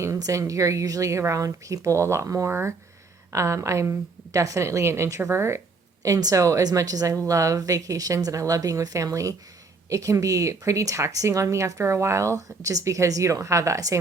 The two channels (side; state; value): left; quieter; 4.0 dB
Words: and you're usually around people a lot more. I'm definitely an introvert. And so, as much as I love vacations and I love being with family, it can be pretty taxing on me after a while just because you don't have that